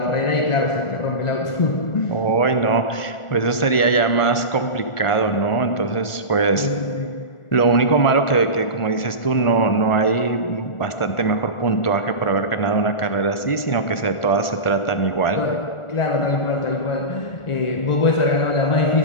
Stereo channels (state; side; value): late; right; 1.4 ms